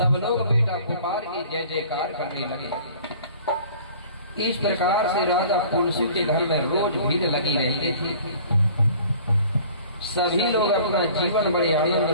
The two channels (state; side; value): inverted; both; correlation -0.49